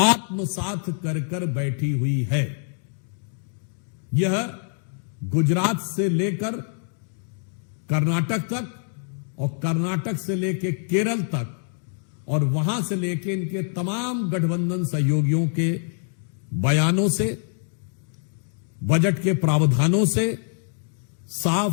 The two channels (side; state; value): right; silent; digital silence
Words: आत्मसात कर कर बैठी हुई है। यह गुजरात से लेकर कर्नाटक तक और कर्नाटक से लेकर केरल तक और वहां से लेकर इनके तमाम गठबंधन सहयोगियों के बयानों से, बजट के प्रावधानों से